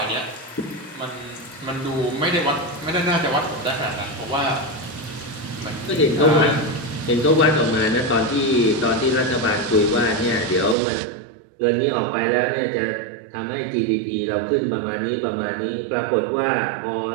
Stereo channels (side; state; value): left; drops out; at 10.8 s